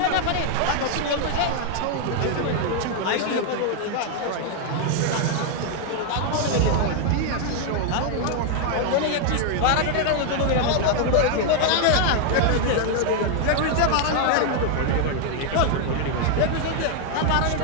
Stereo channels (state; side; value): different; both; correlation 0.00